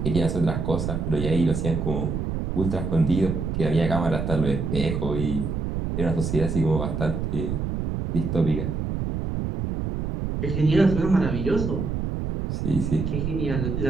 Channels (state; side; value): noise; right; rumble, 2 dB below the sound